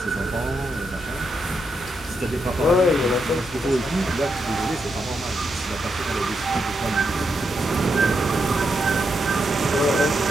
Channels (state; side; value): normal; both; correlation 0.82